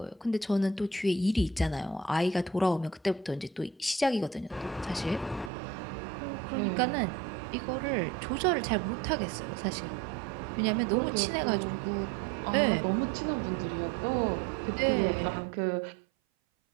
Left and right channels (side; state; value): left; drops out; at 5.5 s